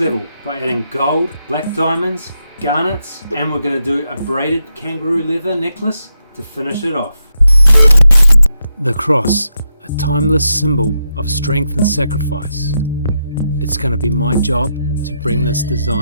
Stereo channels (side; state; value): both; inverted; correlation -0.84